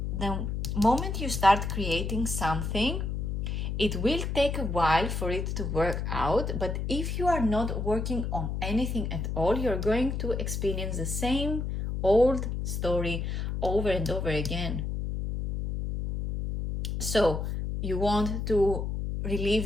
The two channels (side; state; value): left; noise; hum, 2 dB below the sound